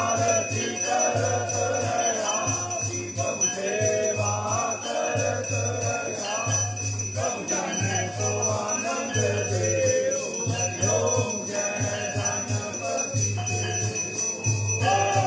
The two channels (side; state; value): both; identical; correlation 1.00